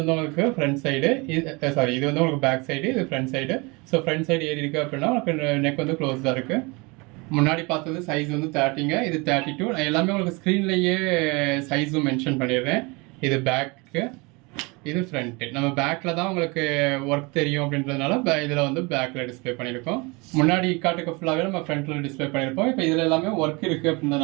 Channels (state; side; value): quieter; left; 27.1 dB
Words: உங்களுக்கு ஃப்ரண்ட் சைடு, இது வந்து உங்களுக்கு பேக் சைடு, இது front side. So front side ஏறி இருக்குது அப்படின்னா உங்களுக்கு நெக் வந்து க்ளோஸ்டாக இருக்குது. முன்னாடி பார்த்தது சைஸ் வந்து 30ங்க, இது 32. நான் எல்லாமே உங்களுக்கு ஸ்க்ரீன்லேயே சைஸும் மென்ஷன் பண்ணிடுறேன். இது பேக்கு, இது ஃப்ரண்ட்டு. நம்ம பேக்கில் தான் உங்களுக்கு ஒர்க் தெரியும் அப்படின்றதுனால இதில் வந்து பேக்கில் டிஸ்பிளே பண்ணியிருக்கோம். முன்னாடி காட்டுக்கு ஃபுல்லாகவே நம்ம ஃப்ரண்ட்டில் டிஸ்பிளே பண்ணியிருப்போம். இப்போ இதில் எல்லாமே ஒர்க் இருக்குது